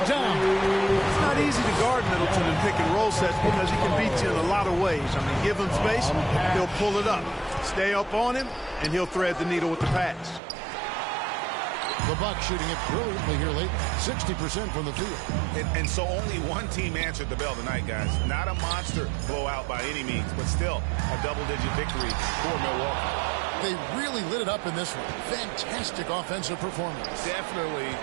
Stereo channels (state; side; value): drops out; left; at 10.4 s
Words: down. It's not easy to guard Middleton in pick and roll sets because he can beat you in a lot of ways. I mean, give him space, he'll pull it up. Stay up on him, and he'll thread the needle with the pass. The Bucks shooting it brilliantly here late. 60% from the field. And so only one team answered the bell tonight, guys. Not a monster blowout by any means, but still a double-digit victory for Milwaukee. They really lit it up in this one. Fantastic offensive performance. Definitely.